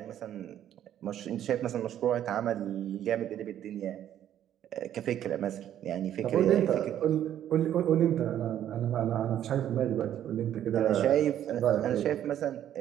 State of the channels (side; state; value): left; quieter; 11.0 dB